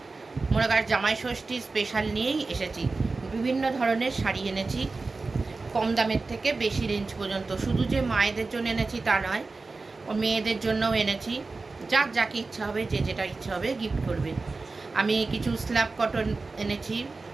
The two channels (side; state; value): left; quieter; 3.8 dB